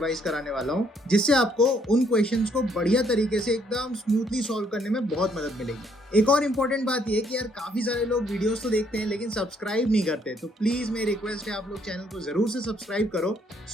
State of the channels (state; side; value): normal; both; correlation 0.68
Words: कराने वाला हूँ, जिससे आपको उन क्वेश्चंस को बढ़िया तरीके से एकदम स्मूथली सॉल्व करने में बहुत मदद मिलेगी। एक और इम्पोर्टेंट बात ये कि यार काफी सारे लोग वीडियोस तो देखते हैं लेकिन सब्सक्राइब नहीं करते, तो प्लीज मेरी रिक्वेस्ट है आप लोग चैनल को जरूर से सब्सक्राइब करो।